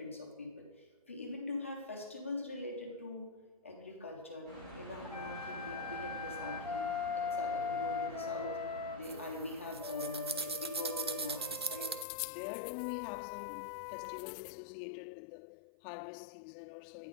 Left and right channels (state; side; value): drops out; right; at 12.1 s